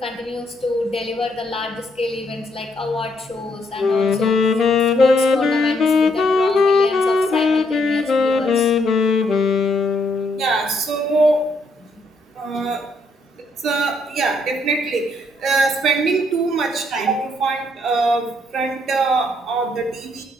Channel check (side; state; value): both; normal; correlation 0.72